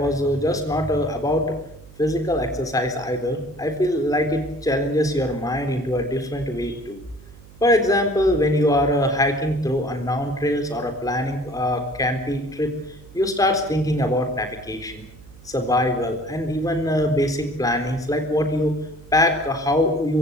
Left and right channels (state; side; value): noise; right; hum, 21 dB below the sound